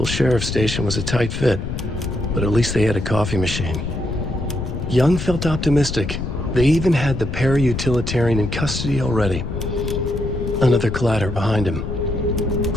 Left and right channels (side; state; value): left; noise; rumble, 5 dB below the sound